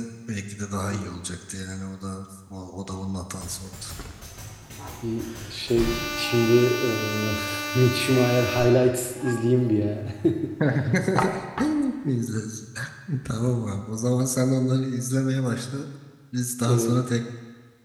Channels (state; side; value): identical; both; correlation 1.00